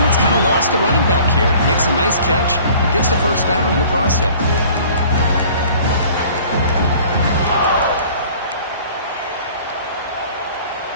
kind of lost a running back here. Makes a nice catch and gets the first down in the process.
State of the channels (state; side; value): inverted; both; correlation -0.50